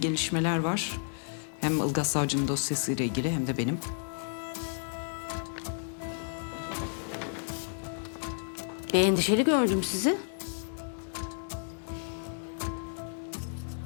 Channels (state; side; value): silent; right; digital silence